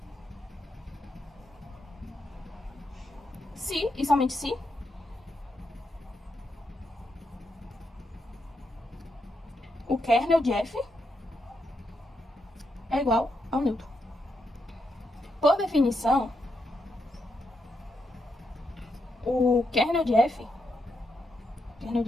se e somente se o kernel de F é igual ao neutro. Por definição, o kernel de F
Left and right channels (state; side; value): normal; both; correlation 0.82